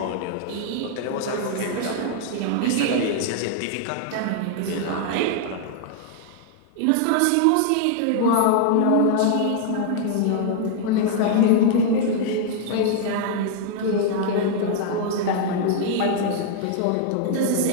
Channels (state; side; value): different; both; correlation 0.00